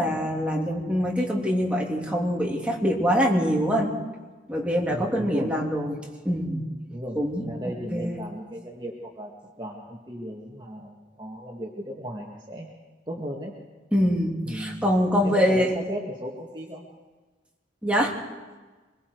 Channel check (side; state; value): both; normal; correlation 0.73